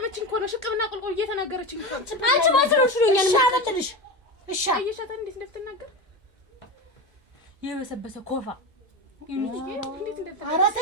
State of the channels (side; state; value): both; normal; correlation 0.21